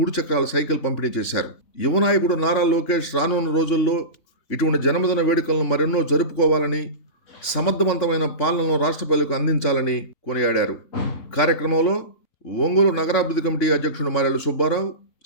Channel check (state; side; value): late; right; 3.5 ms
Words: చక్రాల సైకిల్ పంపిణీ చేశారు. యువ నాయకుడు నారా లోకేష్ రానున్న రోజుల్లో ఇటువంటి జన్మదిన వేడుకలను మరెన్నో జరుపుకోవాలని, సమర్థవంతమైన పాలనను రాష్ట్ర ప్రజలకు అందించాలని కొనియాడారు. కార్యక్రమంలో ఒంగోలు నగరాభివృద్ధి కమిటీ అధ్యక్షుడు Marella Subbarao,